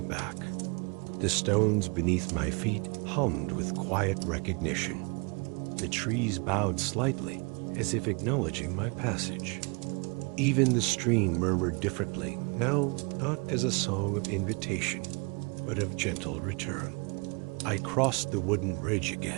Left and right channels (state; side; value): quieter; left; 31.7 dB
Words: back. The stones beneath my feet hummed with quiet recognition. The trees bowed slightly, as if acknowledging my passage. Even the stream murmured differently, now not as a song of invitation, but of gentle return. I crossed the wooden bridge